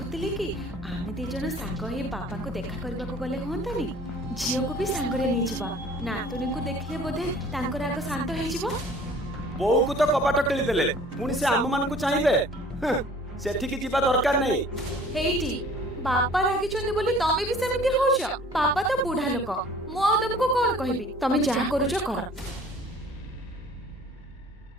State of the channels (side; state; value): both; normal; correlation 0.51